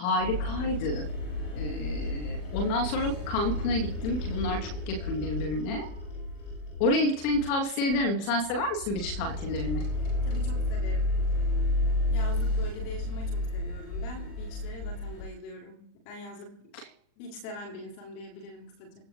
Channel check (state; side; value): late; right; 40 ms